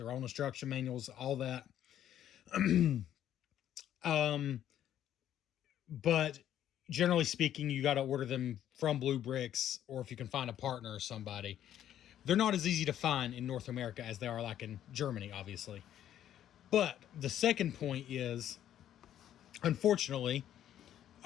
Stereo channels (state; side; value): quieter; right; 11.1 dB